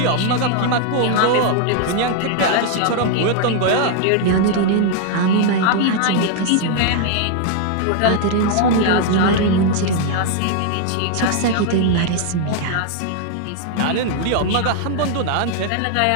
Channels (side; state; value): both; different; correlation 0.00